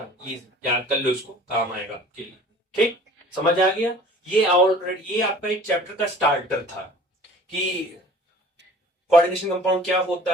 ये याद कर लो, इसको काम आएगा आपके लिए, ठीक, समझ आ गया। ये ऑलरेडी ये आपका एक चैप्टर का स्टार्टर था कि कोऑर्डिनेशन कंपाउंड क्या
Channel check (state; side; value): normal; both; correlation 0.47